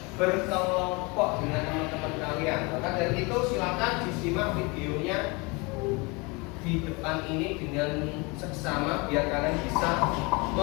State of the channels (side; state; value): right; quieter; 27.6 dB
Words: berkelompok dengan teman-teman kalian. Maka dari itu silakan disimak videonya di depan ini dengan seksama biar kalian bisa